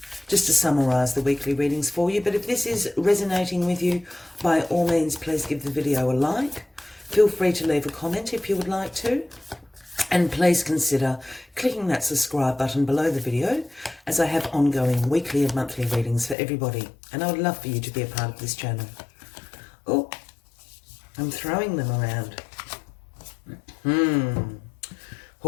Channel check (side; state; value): right; drops out; at 16.4 s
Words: just to summarise the weekly readings for you. But if this is resonating with you, by all means, please give the video a like. Feel free to leave a comment if you would like to. And please consider clicking that subscribe button below the video, as I have ongoing weekly and monthly readings for everybody. And I would love for you to be a part of this channel. Oh, I'm throwing them around.